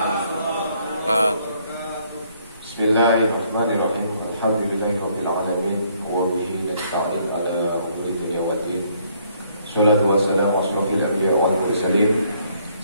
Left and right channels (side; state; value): both; inverted; correlation -0.67